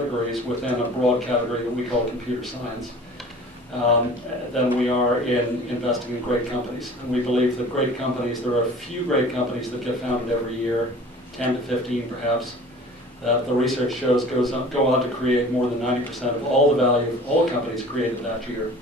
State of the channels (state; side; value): normal; both; correlation 0.44